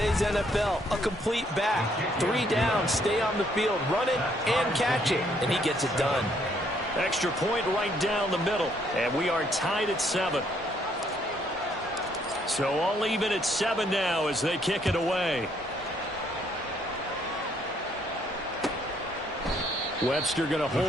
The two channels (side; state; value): both; normal; correlation 0.68